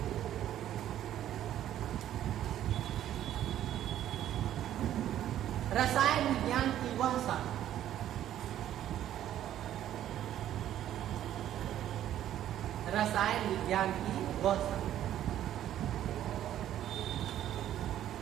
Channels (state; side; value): quieter; left; 11.8 dB